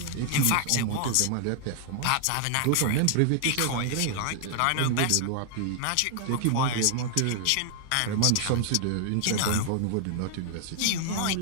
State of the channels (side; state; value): both; different; correlation 0.00